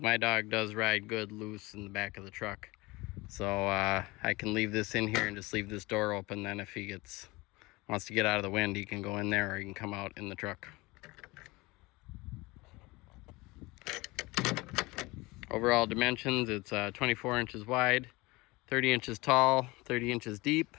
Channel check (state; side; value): quieter; right; 22.6 dB